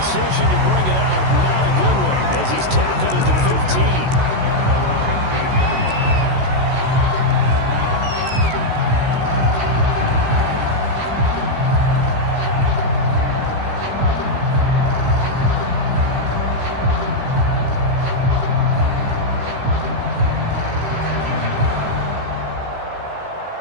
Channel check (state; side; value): late; left; 16 ms